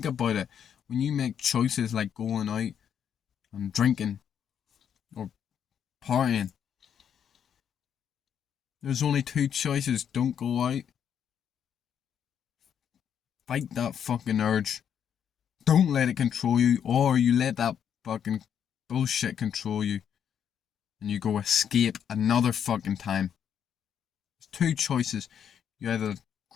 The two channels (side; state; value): right; quieter; 8.5 dB